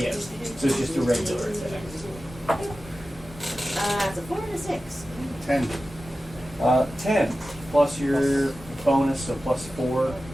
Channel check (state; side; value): normal; both; correlation 0.94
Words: Yes, so it's just a regular attack. It's a 4 and a 6. 10. 10 plus your bonus, so plus 4,